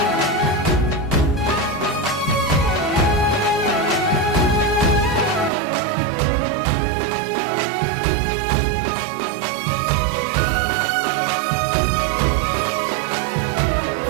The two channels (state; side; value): drops out; left; at 5.5 s